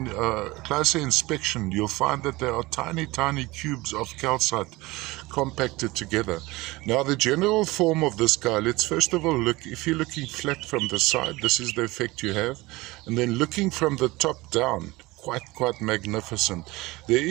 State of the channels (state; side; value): quieter; left; 21.1 dB